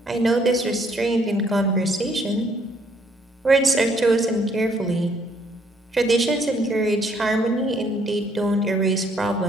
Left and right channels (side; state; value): both; normal; correlation 0.67